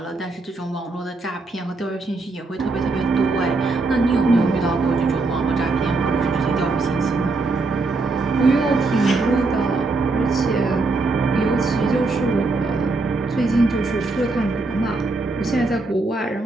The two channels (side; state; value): left; quieter; 3.4 dB